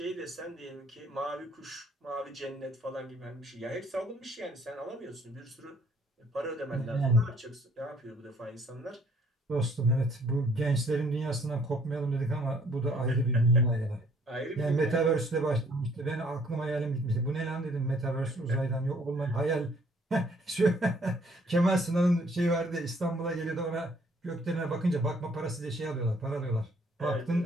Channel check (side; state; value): both; normal; correlation 0.62